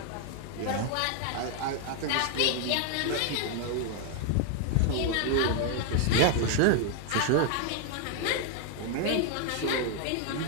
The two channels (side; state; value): both; different; correlation 0.00